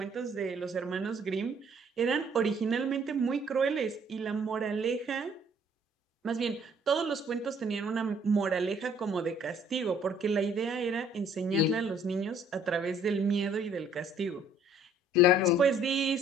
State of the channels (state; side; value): normal; both; correlation 0.59